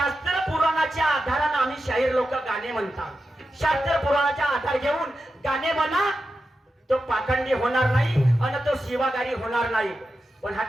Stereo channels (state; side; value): normal; both; correlation 0.90